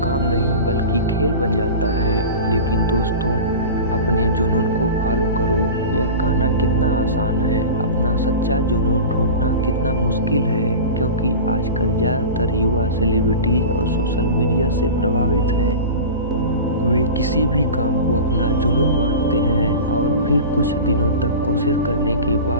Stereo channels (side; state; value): both; inverted; correlation -0.32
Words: नहीं बल्कि खेल बन जाता है। लेकिन दोस्तों, अपने जुनून को फॉलो करो। यह कहना कितना आसान है, अपना सच्चा जुनून ढूंढना कितना मुश्किल है, क्योंकि आजकल ज़्यादातर युवा सेलिब्रिटीज और सोशल मीडिया से प्रभावित हैं। वे किसी भी काम को अपना जुनून मानते हैं और फिर कुछ दिनों तक कोशिश करने के